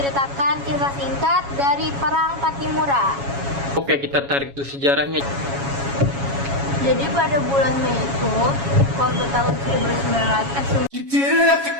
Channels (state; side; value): late; left; 7.2 ms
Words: kisah singkat dari perang Pattimura. Oke, kita tarik tuh sejarahnya. Jadi pada bulan Mei itu, waktu tahun